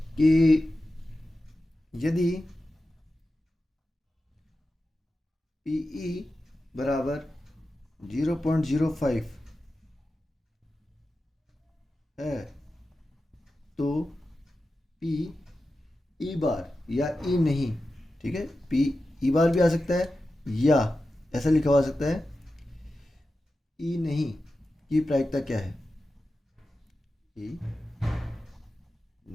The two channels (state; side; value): normal; both; correlation 0.92